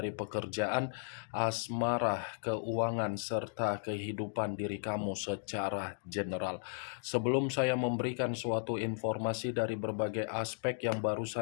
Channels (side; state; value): right; silent; digital silence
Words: pekerjaan, asmara, keuangan, serta kehidupan diri kamu secara general. Sebelum saya memberikan suatu informasi dari berbagai aspek yang